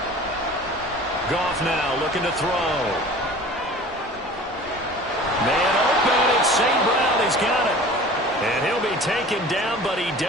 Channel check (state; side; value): normal; both; correlation 0.42